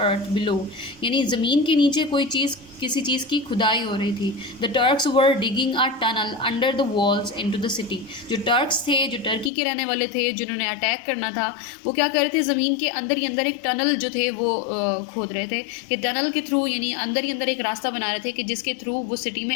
below. यानी ज़मीन के नीचे कोई चीज़ किसी चीज़ की खुदाई हो रही थी. The Turks were digging a tunnel under the walls into the city. जो टर्क्स थे, जो टर्की के रहने वाले थे, जिन्होंने अटैक करना था, वो क्या कर रहे थे, ज़मीन के अंदर ही अंदर एक टनल जो थे वो खोद रहे थे कि टनल के थ्रू यानी अंदर ही अंदर एक रास्ता बना रहे थे कि जिसके थ्रू वो सिटी में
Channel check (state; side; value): drops out; right; at 9.5 s